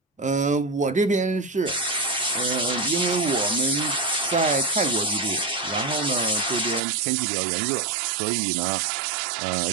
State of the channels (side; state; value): left; drops out; at 6.8 s